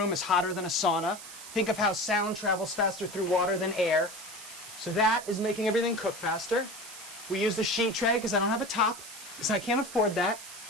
is hotter than a sauna. Think of how sound travels faster through water than air. So that is making everything cook faster. We used a sheet tray because I don't have a top, because I can't afford that.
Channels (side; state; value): right; noise; hiss, 14 dB below the sound